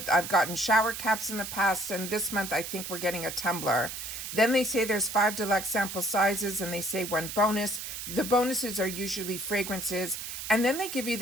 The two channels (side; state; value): right; noise; hiss, 7 dB below the sound